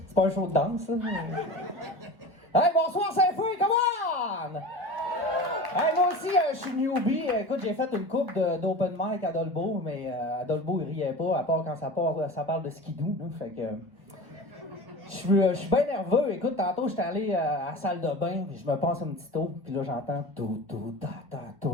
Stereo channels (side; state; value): left; late; 1.3 ms